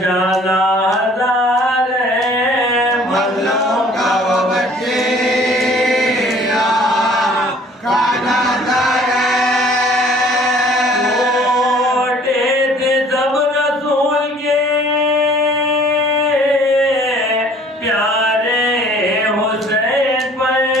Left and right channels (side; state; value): both; normal; correlation 0.54